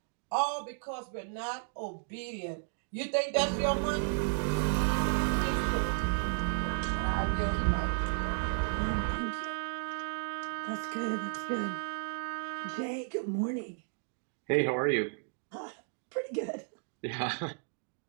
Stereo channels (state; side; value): silent; left; 55 dB below the other